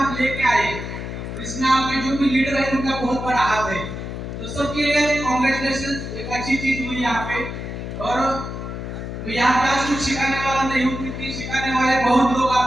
लेके आए, तो इसमें आपके जो भी लीडर है उनका बहुत बड़ा हाथ है, तो सबके लिए कांग्रेचुलेशन। एक अच्छी चीज हुई यहाँ पे। और यहाँ पे आज कुछ सिखाने वाला नहीं हूँ, क्योंकि सिखाने वाले बहुत लोग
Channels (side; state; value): left; noise; hum, 7 dB below the sound